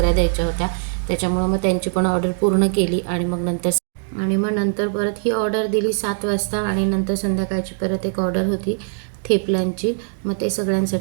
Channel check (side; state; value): left; silent; digital silence